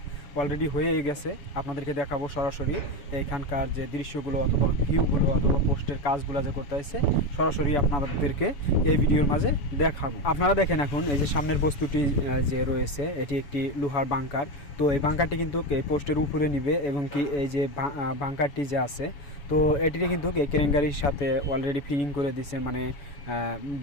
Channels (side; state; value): right; late; 7.0 ms